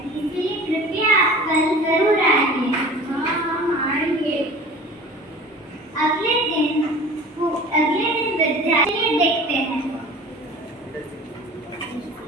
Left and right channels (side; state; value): both; normal; correlation 0.41